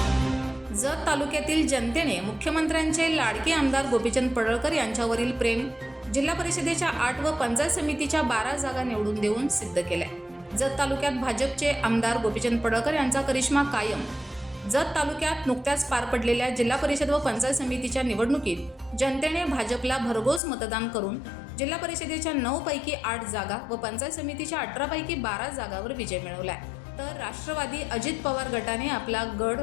जत तालुक्यातील जनतेने मुख्यमंत्र्यांचे लाडके आमदार गोपीचंद पडळकर यांच्यावरील प्रेम जिल्हा परिषदेच्या 8 व पंचायत समितीच्या 12 जागा निवडून देऊन सिद्ध केलाय। जत तालुक्यात भाजपचे आमदार गोपीचंद पडळकर यांचा करिश्मा कायम। जत तालुक्यात नुकत्याच पार पडलेल्या जिल्हा परिषद व पंचायत समितीच्या निवडणुकीत जनतेने भाजपला भरघोस मतदान करून जिल्हा परिषदेच्या 9 पैकी 8 जागा व पंचायत समितीच्या 18 पैकी 12 जागावर विजय मिळवलाय। तर राष्ट्रवादी अजित पवार गटाने आपला गड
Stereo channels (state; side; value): drops out; right; at 20.4 s